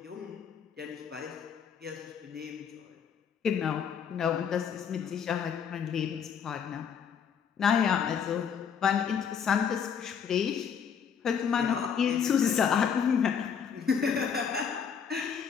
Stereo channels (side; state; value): right; quieter; 7.3 dB